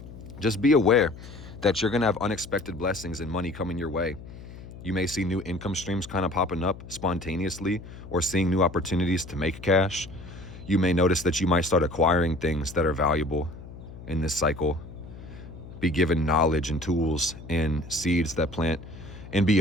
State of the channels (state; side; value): noise; left; hum, 15 dB below the sound